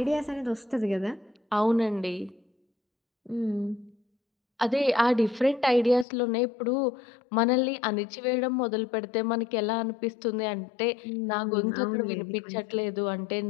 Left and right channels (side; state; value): right; drops out; at 6.1 s